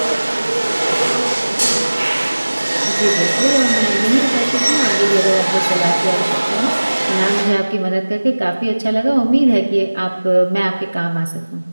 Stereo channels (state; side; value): inverted; both; correlation -1.00